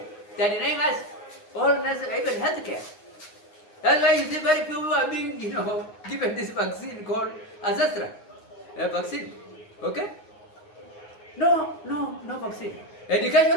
They are denying us all necessary, even healthcare. That's why you see very few people are being, given this vaccine called aspirant vaccine. Okay? No vaccine. Education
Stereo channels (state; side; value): late; right; 9.6 ms